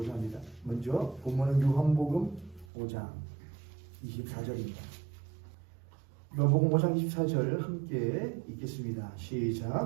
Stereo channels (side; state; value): left; drops out; at 2.7 s